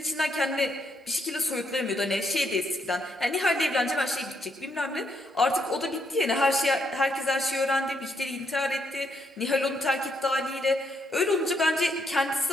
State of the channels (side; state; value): both; normal; correlation 0.75